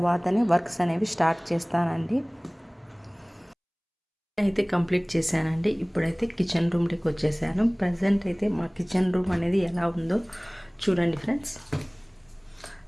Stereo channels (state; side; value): identical; both; correlation 1.00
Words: వర్క్స్ అనేవి స్టార్ట్ చేస్తానండి. అయితే కంప్లీట్ చేశానండి. ఇప్పుడైతే కిచెన్ రూమ్లోకి వచ్చేసాను. ప్రజెంట్ అయితే మా కిచెన్ రూమ్ అనేది ఎలా ఉందో చూడండి ఫ్రెండ్స్.